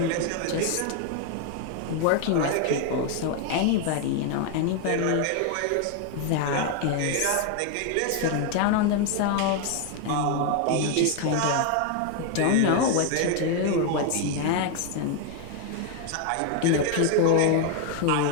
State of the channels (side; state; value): both; different; correlation 0.01